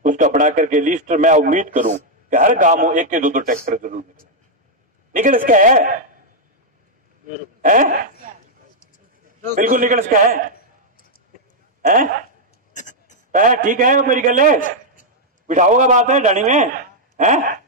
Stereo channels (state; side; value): normal; both; correlation -0.02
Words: उसका बना करके लिस्ट मैं उम्मीद करूं कि हर गांव में 1 के 2 ट्रैक्टर जरूर निकल इसका है? बिल्कुल निकल इसका है? ठीक है मेरी गल है बिठाओगा बात है डाणी में है।